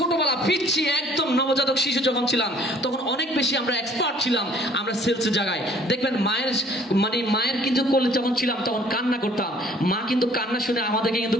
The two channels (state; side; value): normal; both; correlation 0.56